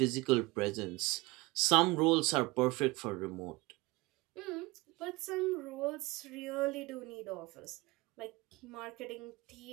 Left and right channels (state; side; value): quieter; left; 23.1 dB